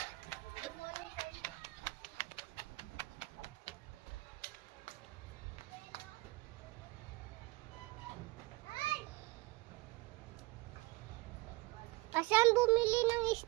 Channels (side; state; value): left; quieter; 21.4 dB